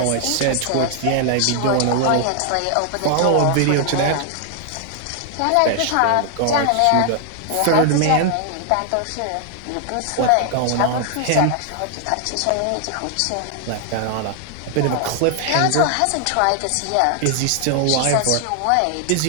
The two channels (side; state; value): both; different; correlation 0.00